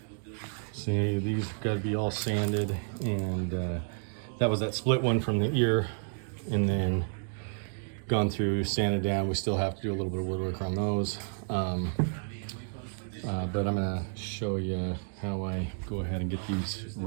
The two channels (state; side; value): silent; left; digital silence